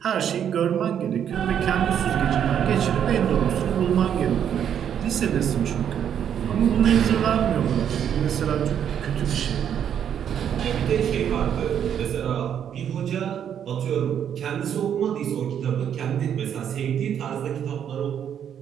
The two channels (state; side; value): quieter; left; 9.0 dB